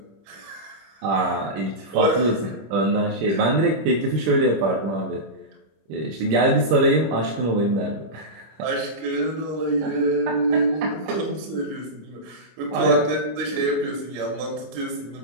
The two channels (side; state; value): left; late; 26 ms